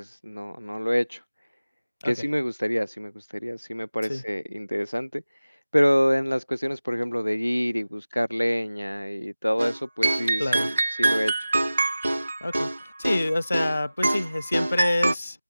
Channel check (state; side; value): inverted; both; correlation -0.97